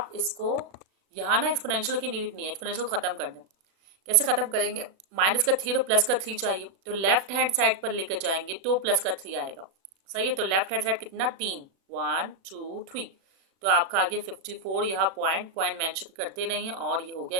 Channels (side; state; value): left; late; 36 ms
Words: इसको, यहाँ ना एक्सपोनेंशियल की नीड नहीं है, एक्सपोनेंशियल खत्म कर दें। कैसे खत्म करेंगे, माइनस का 3 और प्लस का 3 चाहिए, तो लेफ्ट हैंड साइड पर लेकर जाएंगे तो प्लस का 3 आएगा। सही है, तो लेफ्ट हैंड साइड कितना, 3, 1 2 3, तो आपका आ गया 54। यहाँ पॉइंट पॉइंट मेंशन करते नहीं है, और ये हो